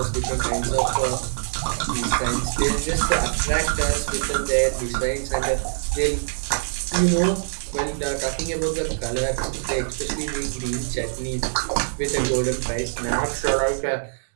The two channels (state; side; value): silent; left; 63 dB below the other